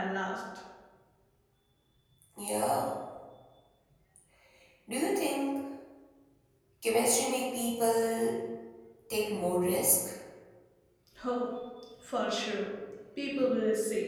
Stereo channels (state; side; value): identical; both; correlation 1.00